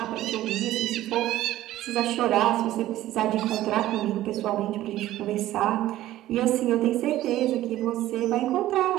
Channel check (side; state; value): left; quieter; 14.5 dB